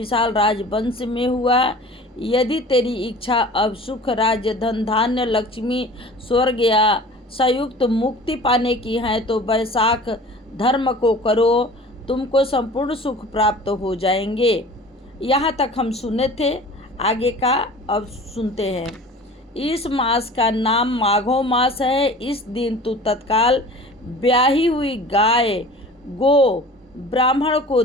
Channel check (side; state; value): both; normal; correlation 0.42